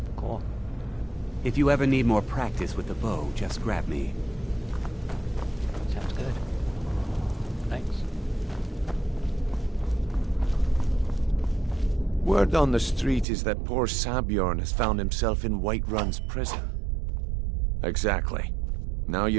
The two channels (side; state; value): left; drops out; at 13.2 s